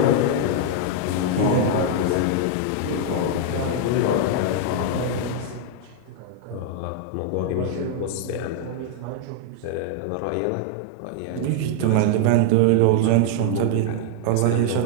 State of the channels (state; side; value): different; both; correlation 0.00